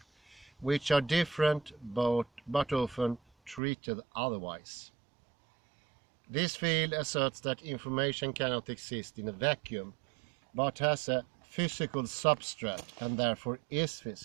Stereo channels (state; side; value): drops out; left; at 3.6 s